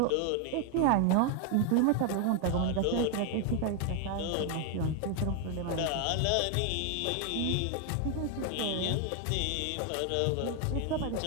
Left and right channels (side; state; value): both; different; correlation 0.01